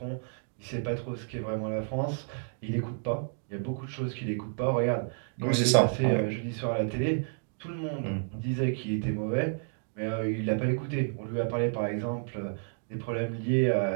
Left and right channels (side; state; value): left; silent; 57 dB below the other